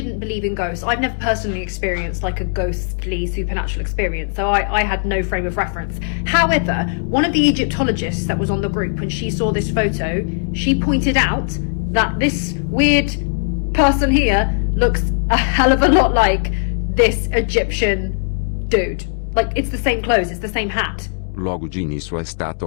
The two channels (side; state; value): right; silent; digital silence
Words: believe in ghosts. I've never personally experienced like a ghostly supernatural experience, so I had no frame of reference. However, one of the Egyptologists that was on the group, when she saw this photo, she pointed out that this weird person here looks a hell of a lot like this Egyptian dude. Like, it's the same clothes, it's the same hat. Logo de início a